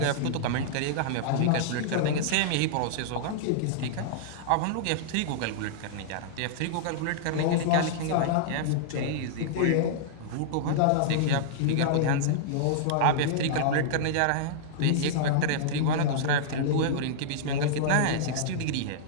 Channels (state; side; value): different; both; correlation -0.02